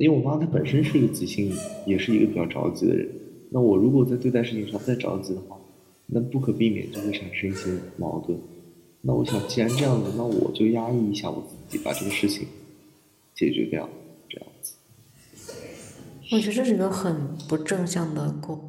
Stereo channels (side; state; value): both; identical; correlation 1.00